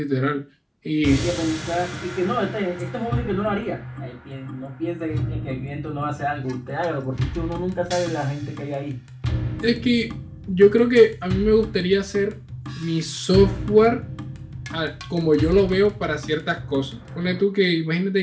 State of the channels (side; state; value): both; identical; correlation 1.00